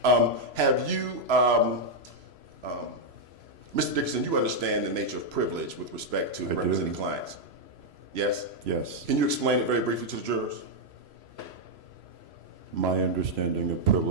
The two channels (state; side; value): late; left; 3.0 ms